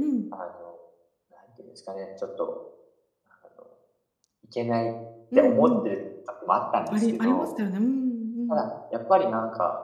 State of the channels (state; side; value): identical; both; correlation 1.00